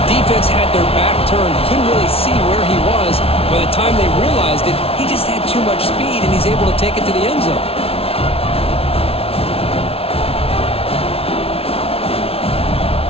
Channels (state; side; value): late; right; 0.28 ms